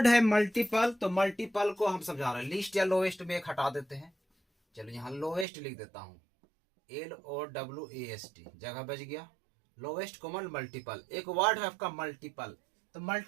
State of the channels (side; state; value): left; drops out; at 5.5 s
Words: है मल्टीपल, तो मल्टीपल को हम समझा रहे हैं। लिस्ट या लोवेस्ट में एक हटा देते हैं। चलो, यहां लोवेस्ट लिख देता हूं, LOWEST, जगह बच गया। लोवेस्ट कॉमन मल्टीपल, एक वर्ड है आपका मल्टीपल। तो